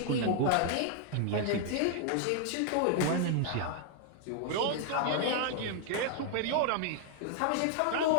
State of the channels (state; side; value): different; both; correlation 0.00